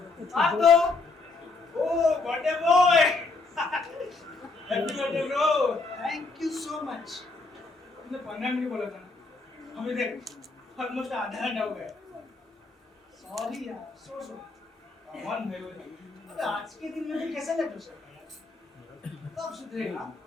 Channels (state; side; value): quieter; right; 3.8 dB